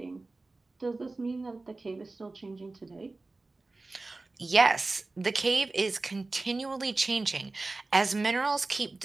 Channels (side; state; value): left; quieter; 3.3 dB